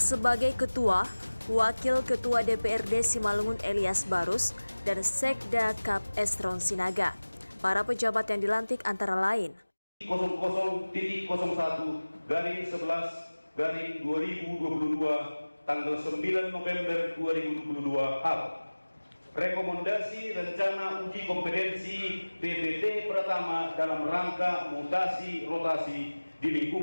Ketua, Wakil Ketua DPRD Simalungun Elias Barus, dan Sekda Kap Estron Sinaga. Para pejabat yang dilantik antara lain 00.11/2022 tanggal 9 November 2022 hal. Rekomendasi rencana uji kompetensi PPT Pratama dalam rangka mutasi rotasi di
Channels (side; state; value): both; inverted; correlation -1.00